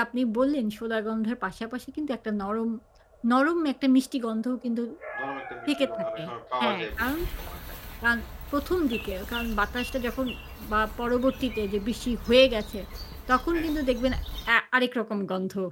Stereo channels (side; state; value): both; identical; correlation 1.00